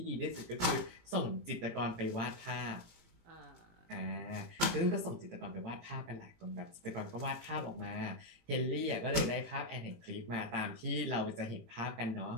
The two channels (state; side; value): late; left; 18 ms